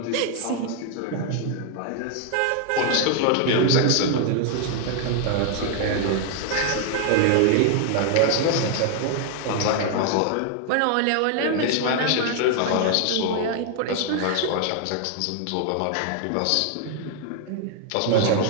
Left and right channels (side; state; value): both; different; correlation 0.00